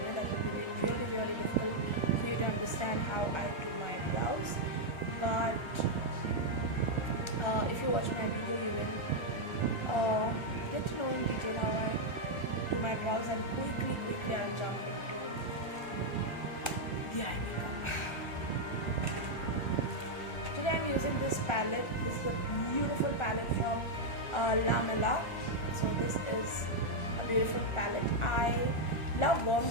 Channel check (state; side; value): late; right; 1.3 ms